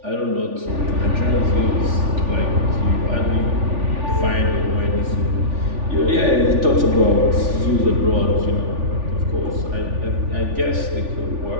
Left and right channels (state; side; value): late; left; 3.4 ms